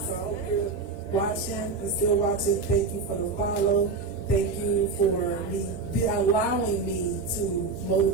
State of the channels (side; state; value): left; quieter; 4.3 dB